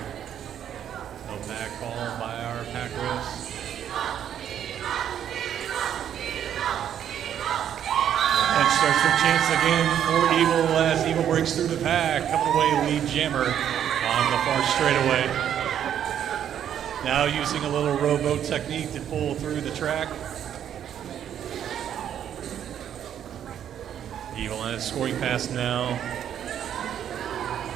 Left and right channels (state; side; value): quieter; left; 9.7 dB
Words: No pack called by our pack refs. The bench starts their chance again for Evil as Evil breaks through the pack, coming away lead jammer on the far straightaway. Now using a little rowboat technique to pull through the track. Evil on his scoring pass now.